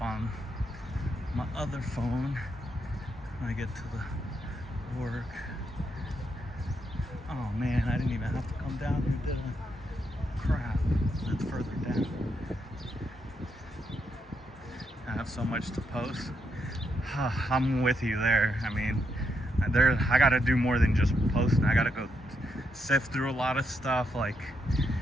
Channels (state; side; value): normal; both; correlation 0.80